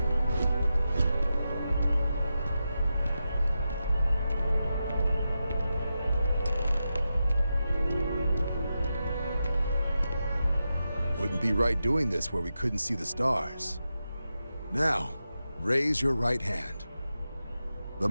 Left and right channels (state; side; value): inverted; both; correlation -0.89